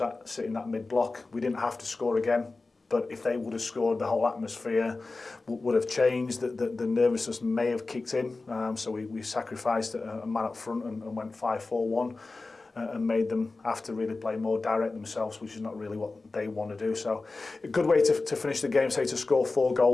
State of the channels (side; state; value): right; quieter; 3.6 dB